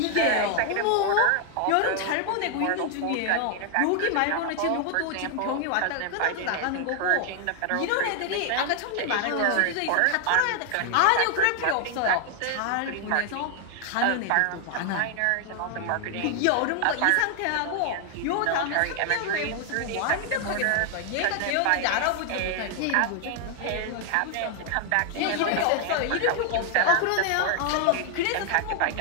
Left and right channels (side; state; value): both; different; correlation 0.00